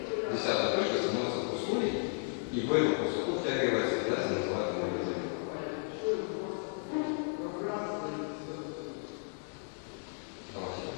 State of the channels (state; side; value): silent; right; 55 dB below the other